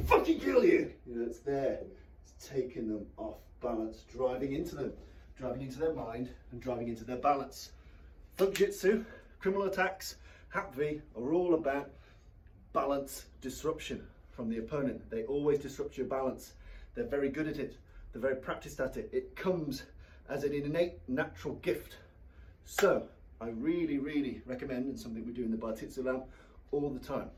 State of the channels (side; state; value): both; identical; correlation 1.00